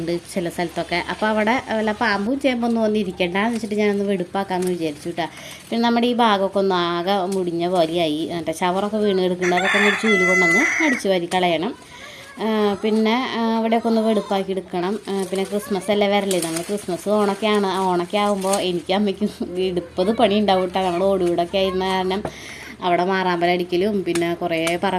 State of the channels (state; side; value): identical; both; correlation 1.00